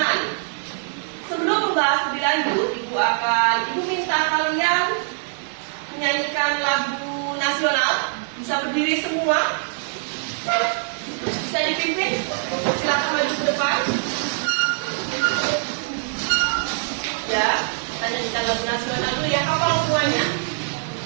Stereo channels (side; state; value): left; silent; digital silence